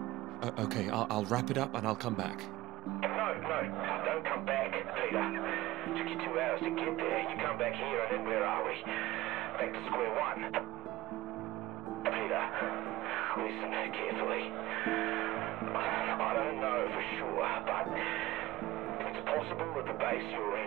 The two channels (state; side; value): quieter; left; 17.7 dB